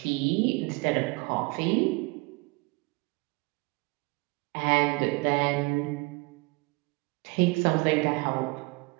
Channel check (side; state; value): left; quieter; 26.9 dB